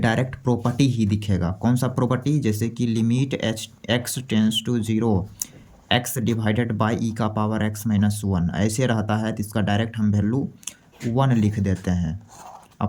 प्रॉपर्टी ही दिखेगा। कौन सा प्रॉपर्टी, जैसे कि limit x tends to 0 x divided by e का पावर x-1 ऐसे रहता है तो इसका डायरेक्ट हम वैल्यू 1 लिख देते हैं।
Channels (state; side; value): identical; both; correlation 1.00